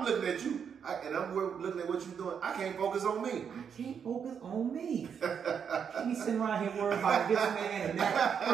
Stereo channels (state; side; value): quieter; left; 7.2 dB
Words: looking at you, and I'm looking at what you're doing, I can't focus on me. I can't focus on me. Can't be sitting around here worrying about this man and that